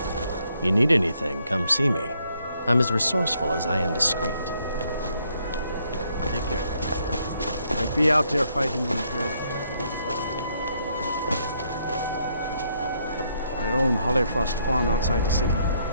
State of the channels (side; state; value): both; inverted; correlation -0.72